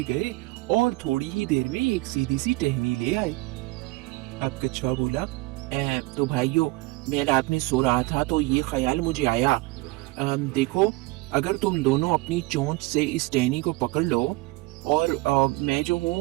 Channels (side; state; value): left; quieter; 22.3 dB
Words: गए और थोड़ी ही देर में एक सीधी सी टहनी ले आए। अब कछुआ बोला, तो भाइयों, मैं रात में सो रहा था तो ये ख्याल मुझे आया। देखो, अगर तुम दोनों अपनी चोंच से इस टहनी को पकड़ लो और मैं जो